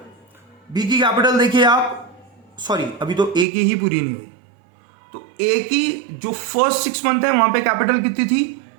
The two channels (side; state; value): left; drops out; at 3.5 s